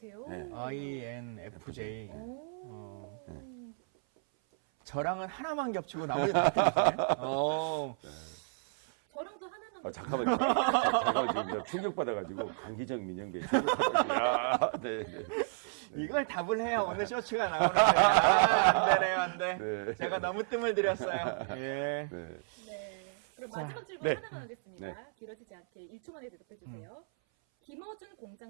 네. INFJ. 오. 저랑은 하나만 겹치고 나머지 다 틀리시네. 저랑도 하나만. 잠깐만, 지금 충격받아가지고, 강기정 민영배. 야, 네. 이걸 답을 해야 오늘 쇼츠가 나오는데. 안 되네요, 안 돼. 네. 제가 너무 뜸을 들였어요. 예. 네. 네. 그럼 마지막 질문 네. 하나만 하겠습니다. 네. 길어지지 않게 1초 만에 대답해 주세요. 김어준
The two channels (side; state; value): left; silent; 56 dB below the other